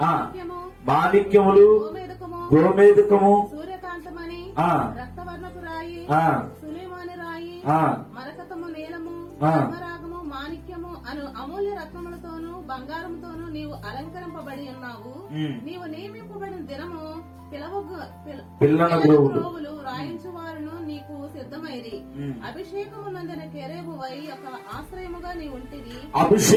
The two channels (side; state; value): both; identical; correlation 1.00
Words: మాణిక్యములు, గోమేదకము, సూర్యకాంతమని, రక్తవర్ణపు రాయి, సులేమాని రాయి, మరకతము నీలము, ధర్మరాగము, మాణిక్యము అను అమూల్య రత్నములతోనూ బంగారముతోనూ నీవు అలంకరింపబడి ఉన్నావు. నీవు నియమింపబడిన దినము పిల్లన గ్రోవులు రాయించు వారును నీకు సిద్ధమైరి. అభిషేకము నందిన కెరూబువై ఒక ఆశ్రయముగా నీ ఉంటివి.